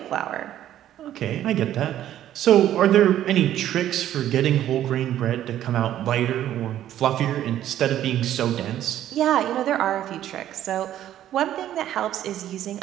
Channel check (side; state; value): left; quieter; 11.9 dB